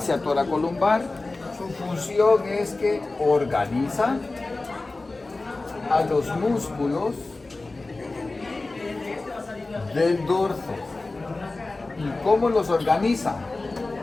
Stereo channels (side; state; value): right; quieter; 3.3 dB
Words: toracolumbar, su función es que organiza a los músculos del dorso. ¿Y cómo los organiza?